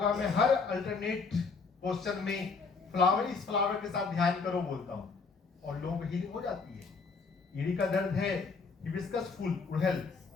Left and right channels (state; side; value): quieter; right; 4.7 dB